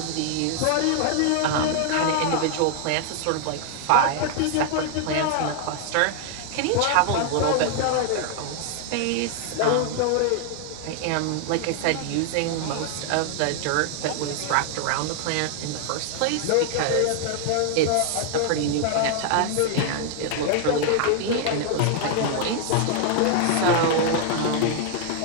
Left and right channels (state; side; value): different; both; correlation 0.00